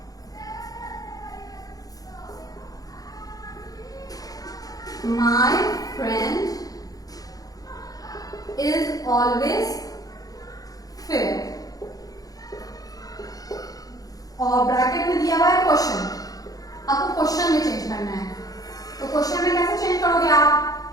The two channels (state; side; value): late; right; 0.18 ms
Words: My friend is always fair, और ब्रैकेट में दिया हुआ है क्वेश्चन, आपको क्वेश्चन में चेंज करना है। तो क्वेश्चन में कैसे चेंज करोगे आप,